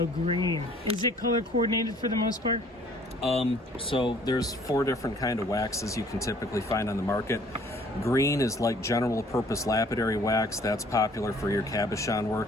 green. Is it color coordinated for the most part? So there's 4 different kind of waxes you can typically find on the market. Green is like general purpose lapidary wax. That's popular for your cabochon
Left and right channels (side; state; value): both; normal; correlation 0.57